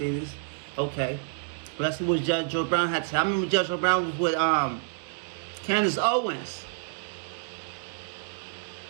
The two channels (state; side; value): silent; left; digital silence